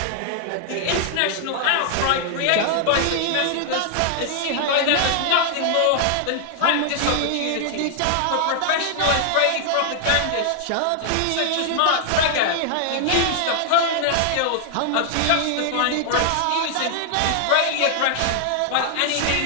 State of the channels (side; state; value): both; different; correlation 0.00